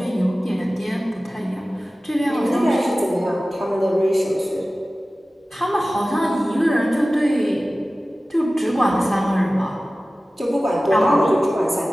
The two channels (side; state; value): both; normal; correlation 0.96